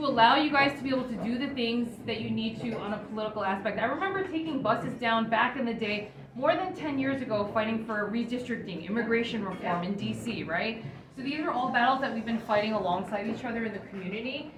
allow you guys to be able to do the things that you need to on a political aspect. I remember taking buses down back in the day, more than 10 years ago, fighting for redistricting, immigration reform in DC, right? So these are all battles that we've been fighting alongside each other in the community.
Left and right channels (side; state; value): both; identical; correlation 1.00